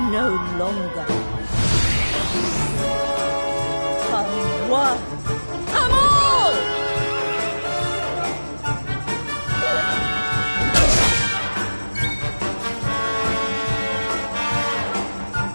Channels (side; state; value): both; inverted; correlation -1.00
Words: no longer. Come one, come all!